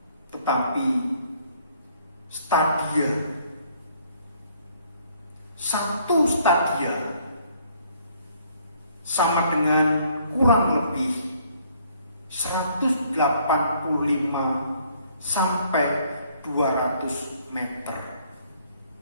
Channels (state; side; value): inverted; both; correlation -0.63